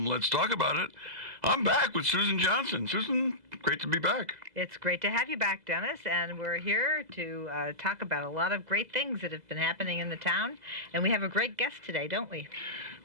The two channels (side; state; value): left; late; 2.0 ms